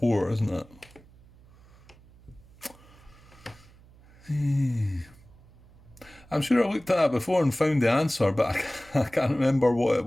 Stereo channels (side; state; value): right; noise; hum, 25 dB below the sound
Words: isn't it? I'm sure I looked at that before and found the answer, but I can't remember what it